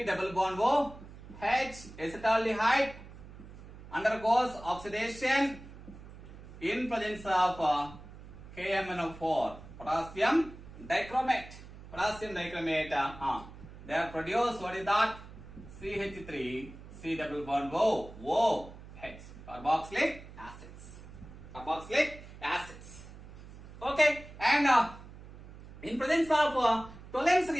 double bond O, H acetaldehyde undergoes oxidation in presence of KMnO4, potassium dichromate. They are produced, what is that? CH3, C double bond O, OH, carboxylic acids. Okay, and in presence of Tollens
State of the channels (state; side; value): noise; right; hum, 16 dB below the sound